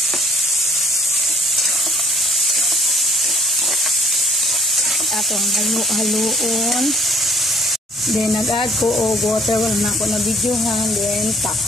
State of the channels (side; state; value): both; normal; correlation 0.61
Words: Atong haluon. Then nag-add ko og water, wala na ako na videohan, then